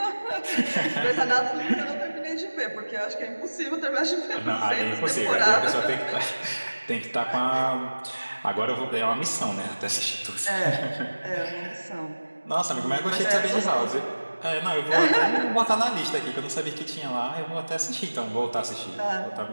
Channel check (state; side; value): inverted; both; correlation -1.00